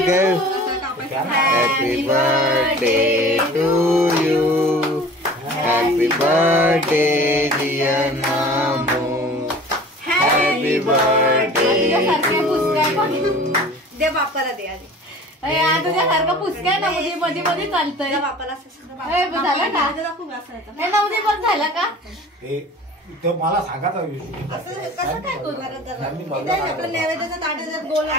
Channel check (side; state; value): both; normal; correlation 0.43